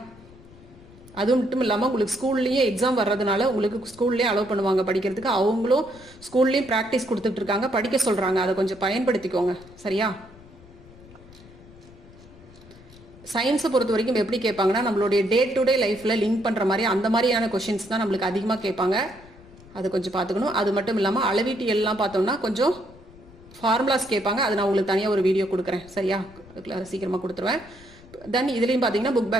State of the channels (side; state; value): left; noise; rumble, 22 dB below the sound